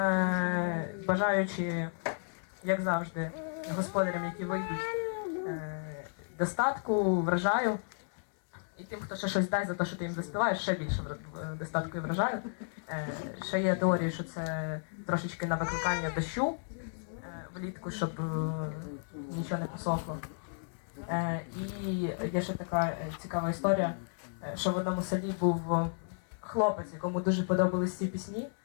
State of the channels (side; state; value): right; silent; digital silence